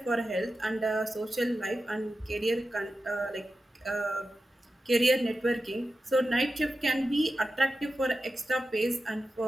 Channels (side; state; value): both; normal; correlation 0.92